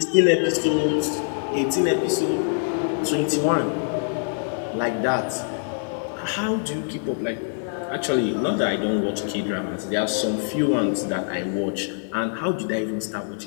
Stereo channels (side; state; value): right; silent; 62 dB below the other